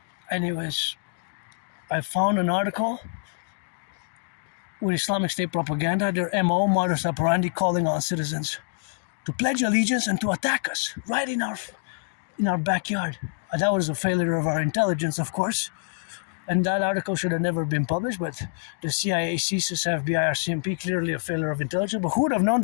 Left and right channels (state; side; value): silent; right; digital silence